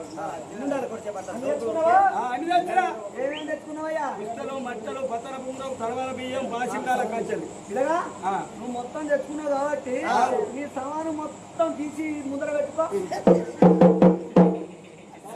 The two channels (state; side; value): identical; both; correlation 1.00